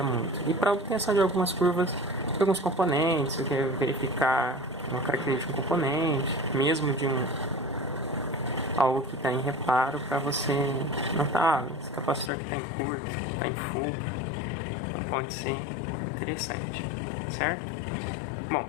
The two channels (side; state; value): right; drops out; at 12.3 s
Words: muito. E para obtenção de algumas curvas de alguns componentes, você quer verificar uma característica de um componente, mesmo de algo que está em reparo, para você notar esse capacitor que está em curto, está em fuga. Então pode ser interessante, certo? Bom,